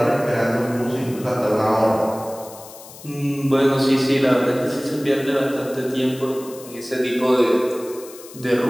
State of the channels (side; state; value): left; noise; hiss, 18 dB below the sound